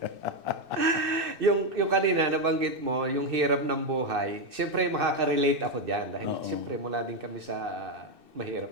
yung kanina, nabanggit mo, yung hirap ng buhay, siyempre makaka-relate ako dyan. Dahil siyempre mula din kami sa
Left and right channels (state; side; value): late; left; 2.6 ms